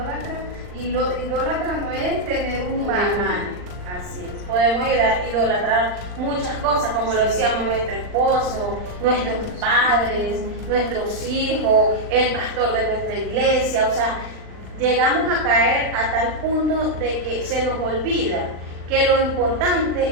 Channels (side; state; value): left; late; 39 ms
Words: Y lo idólatra no es tener un imán. Así es. Podemos idolatrar muchas cosas, como lo decíamos, nuestro esposo, nuestros padres, nuestros hijos, el pastor de nuestra iglesia. O sea, llegamos a caer a tal punto de que se nos olvida que lo